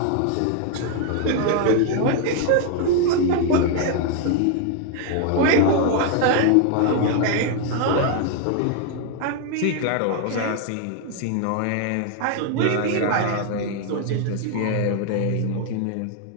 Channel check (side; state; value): both; different; correlation 0.00